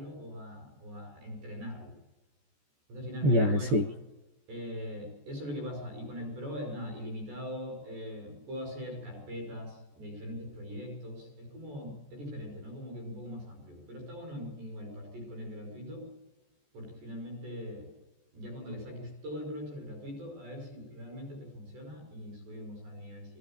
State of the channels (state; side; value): late; left; 14 ms